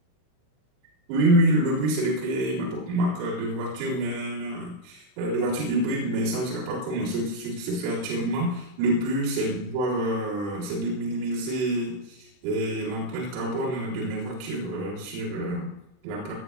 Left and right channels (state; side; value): late; left; 39 ms